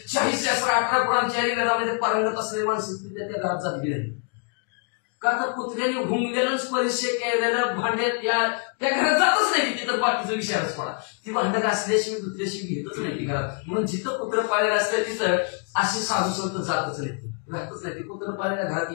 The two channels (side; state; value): right; quieter; 39.0 dB